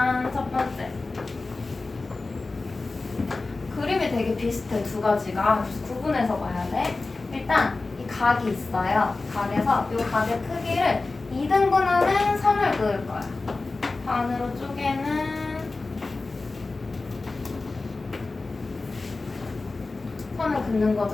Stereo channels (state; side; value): quieter; right; 3.5 dB